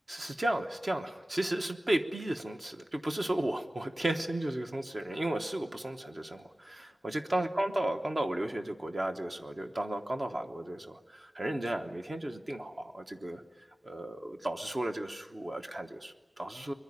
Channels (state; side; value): normal; both; correlation 0.97